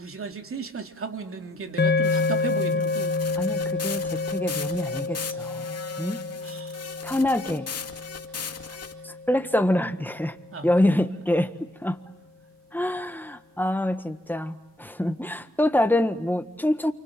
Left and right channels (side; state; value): both; normal; correlation 0.65